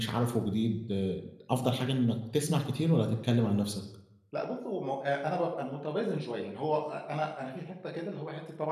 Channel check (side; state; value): both; identical; correlation 1.00